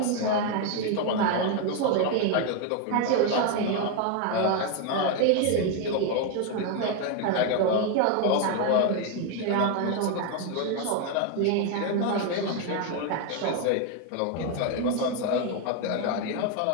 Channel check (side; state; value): both; different; correlation 0.01